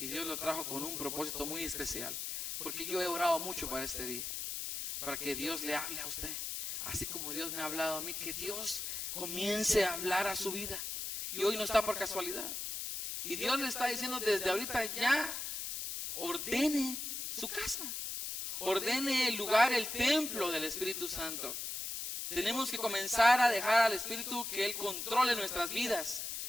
Dios lo trajo con un propósito muy especial. Porque yo he orado mucho para este día. Para que Dios le hable a usted. Así como Dios me ha hablado a mí. Que Dios comience a hablar a su vida. Y hoy no está por casualidad. Y Dios le está diciendo desde ahorita: ya ordene su casa. Ordene el lugar, el templo del Espíritu Santo. Tenemos que comenzar a dejar al Espíritu que Él controle nuestras vidas.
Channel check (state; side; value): noise; left; hiss, 4 dB below the sound